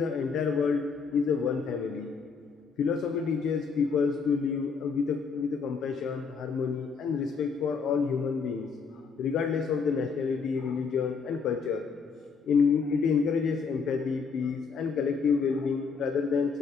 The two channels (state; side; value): quieter; right; 5.4 dB